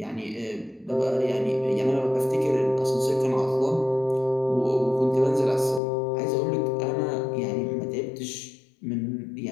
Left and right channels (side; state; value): right; drops out; at 5.8 s